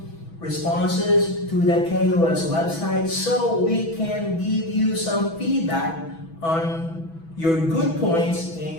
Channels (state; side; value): late; right; 6.1 ms